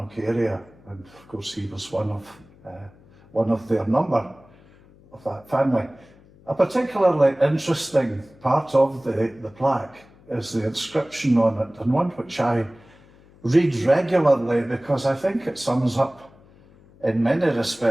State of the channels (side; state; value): left; noise; hum, 26 dB below the sound